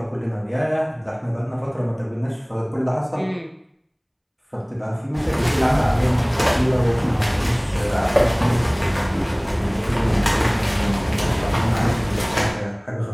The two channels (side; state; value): both; identical; correlation 1.00